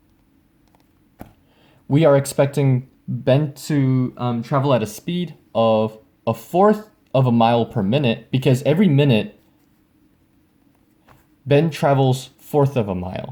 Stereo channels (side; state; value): both; identical; correlation 1.00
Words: we are expecting Ben to travel at a speed of a fourth of a mile per minute, because every minute Ben travels fourth of a